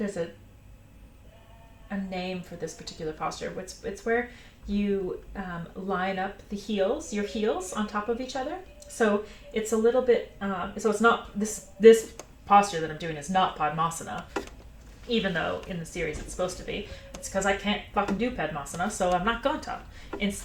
a name for this particular posture. It's where you line up your heels on top of each other. So it's a little bit. So it's not this posture that I'm doing is not Padmasana, even though in the series it's supposed to be. It's because I can't fucking do Padmasana, so I'm not going to.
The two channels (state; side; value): identical; both; correlation 1.00